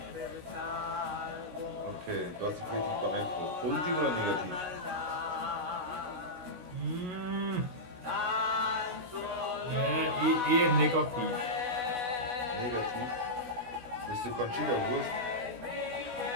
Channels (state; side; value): late; left; 16 ms